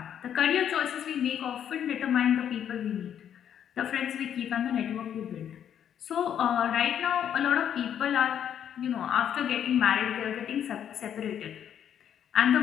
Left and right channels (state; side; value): quieter; right; 9.3 dB